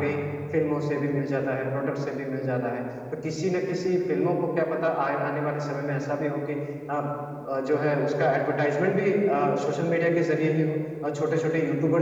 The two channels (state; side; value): identical; both; correlation 1.00